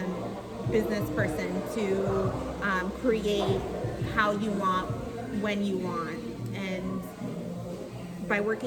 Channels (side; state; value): both; identical; correlation 1.00